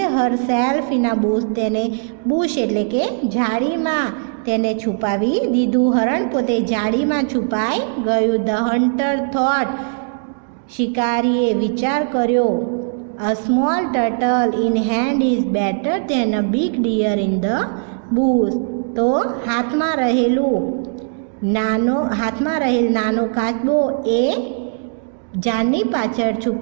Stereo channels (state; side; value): silent; left; digital silence